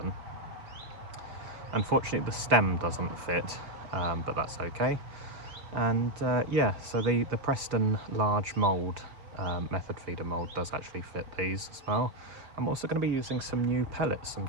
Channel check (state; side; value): late; left; 5.0 ms